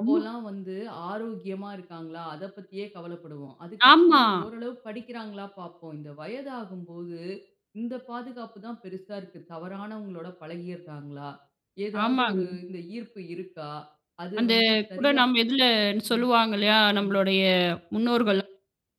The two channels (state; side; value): identical; both; correlation 1.00